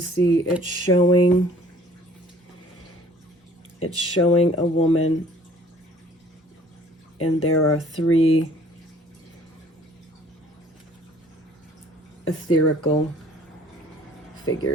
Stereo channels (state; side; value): normal; both; correlation 0.55